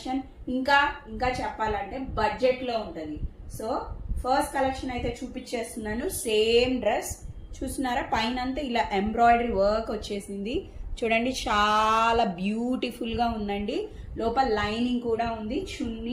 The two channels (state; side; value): identical; both; correlation 1.00